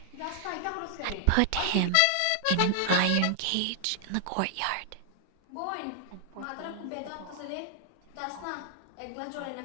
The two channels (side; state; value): both; different; correlation 0.00